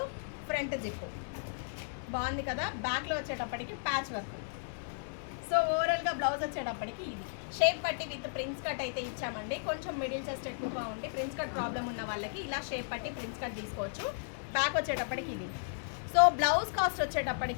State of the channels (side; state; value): right; silent; digital silence